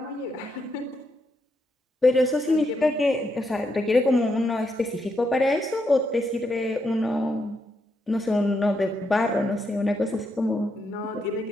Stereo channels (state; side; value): normal; both; correlation 0.80